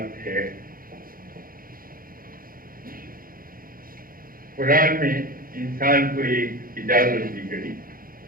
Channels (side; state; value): left; late; 0.42 ms